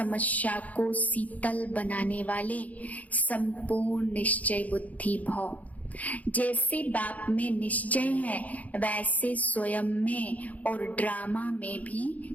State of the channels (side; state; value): right; late; 0.074 ms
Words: को शीतल बनाने वाले संपूर्ण निश्चय बुद्धि भाव। जैसे बाप में निश्चय है, वैसे स्वयं में और ड्रामा में